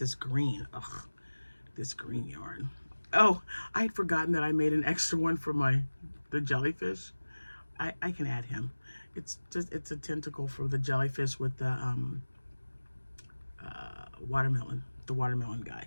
green. Ugh, this green yarn. Oh, I had forgotten that I made an extra one for the jellyfish. I can add him. It's just, it's a tentacle for the jellyfish with the watermelon, the watermelon guy.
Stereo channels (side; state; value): both; inverted; correlation -1.00